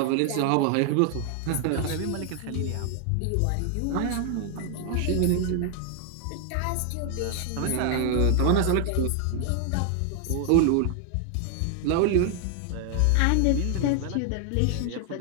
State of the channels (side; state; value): both; different; correlation 0.00